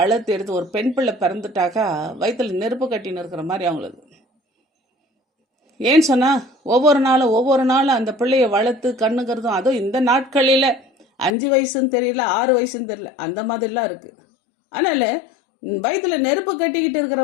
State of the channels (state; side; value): drops out; right; at 11.4 s